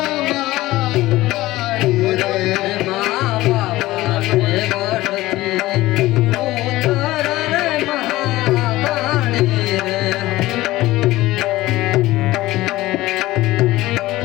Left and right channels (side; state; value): right; quieter; 17.5 dB